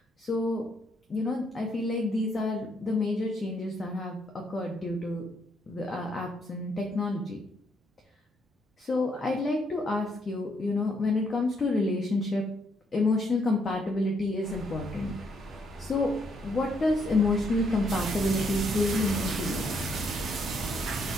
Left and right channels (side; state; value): both; normal; correlation 0.72